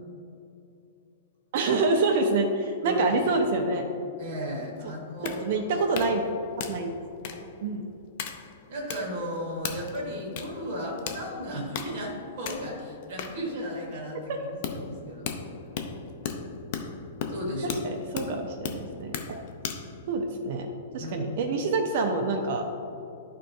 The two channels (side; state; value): both; inverted; correlation -0.32